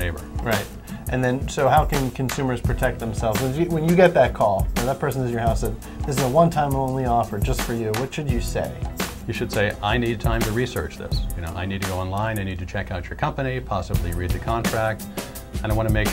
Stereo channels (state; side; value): identical; both; correlation 1.00